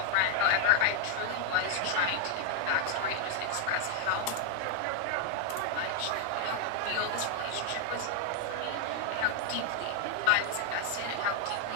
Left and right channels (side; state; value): both; different; correlation 0.00